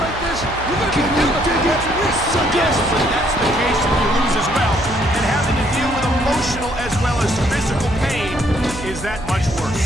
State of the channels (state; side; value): noise; right; hum, 12 dB below the sound